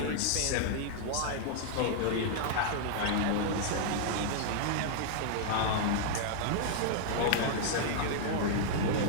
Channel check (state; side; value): different; both; correlation -0.01